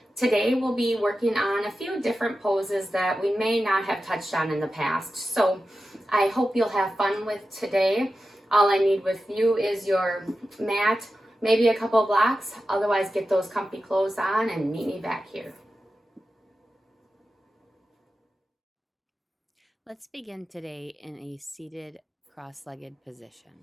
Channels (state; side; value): normal; both; correlation 0.92